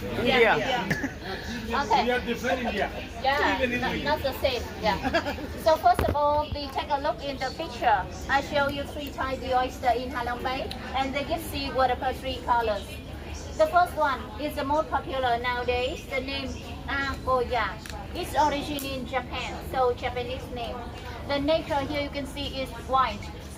India. Okay. We are different India. Yeah, not the same. Yeah. So first of all, we take a look in the picture. I show you three types of oyster in Halong Bay, and they give seawater per three colors. The first one is the most popular nowadays. The name Akoya. Its origin in Japan, so Japanese name. The nature here you can see is white,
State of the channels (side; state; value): both; identical; correlation 1.00